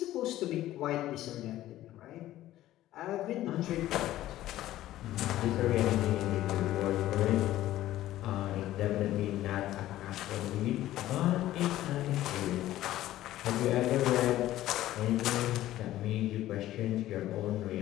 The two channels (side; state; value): right; quieter; 14.4 dB